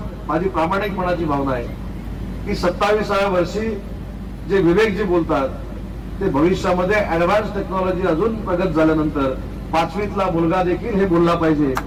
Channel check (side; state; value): both; identical; correlation 1.00